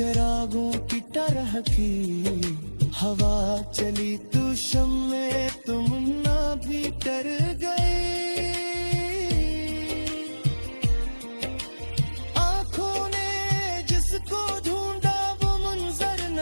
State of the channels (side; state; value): both; inverted; correlation -1.00